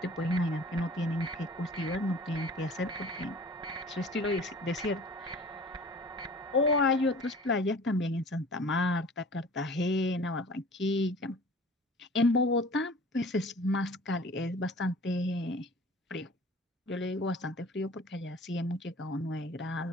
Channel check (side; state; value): both; normal; correlation 0.45